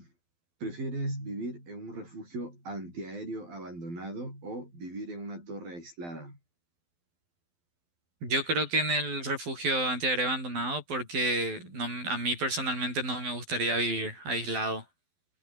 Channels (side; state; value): left; late; 12 ms